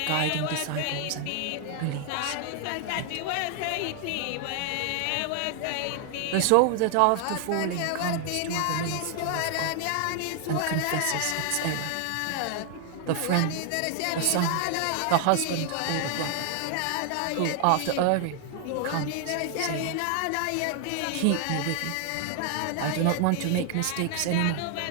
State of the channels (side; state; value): both; different; correlation 0.00